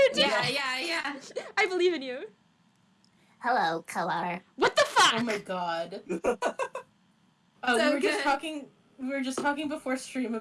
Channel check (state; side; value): identical; both; correlation 1.00